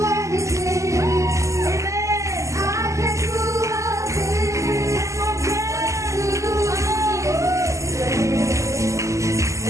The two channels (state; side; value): late; left; 0.15 ms